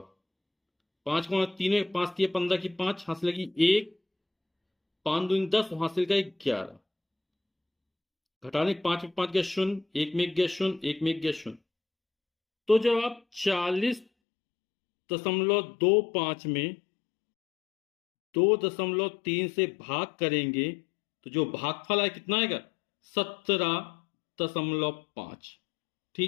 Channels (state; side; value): drops out; right; at 14.1 s